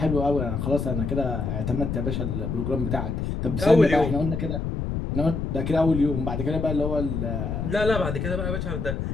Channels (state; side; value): noise; left; rumble, 2 dB below the sound